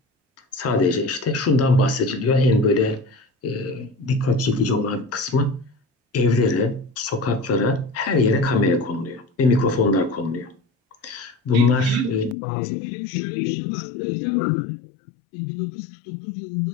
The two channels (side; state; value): right; drops out; at 12.4 s